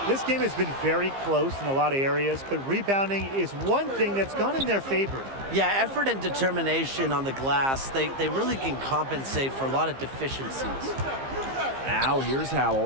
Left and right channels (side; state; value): left; late; 15 ms